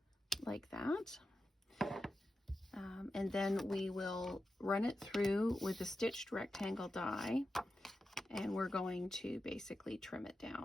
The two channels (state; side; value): normal; both; correlation 0.90